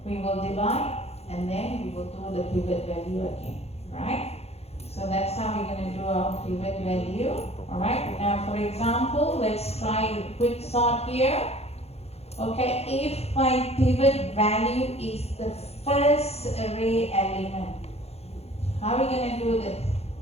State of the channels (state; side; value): late; right; 0.30 ms